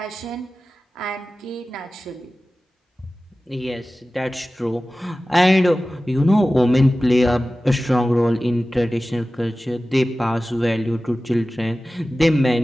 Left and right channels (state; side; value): normal; both; correlation 0.96